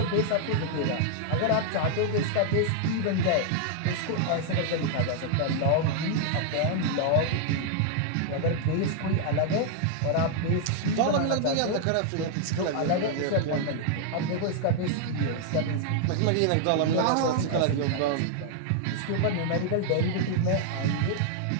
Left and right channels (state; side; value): different; both; correlation 0.00